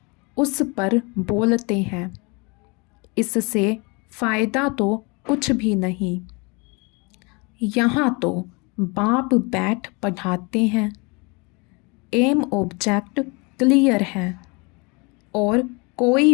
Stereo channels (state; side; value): quieter; right; 29.2 dB